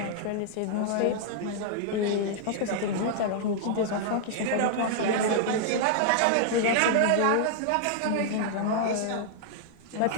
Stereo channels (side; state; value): both; different; correlation -0.01